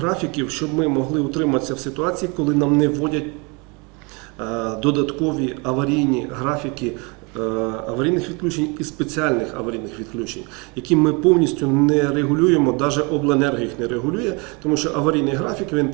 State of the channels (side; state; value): left; quieter; 30.0 dB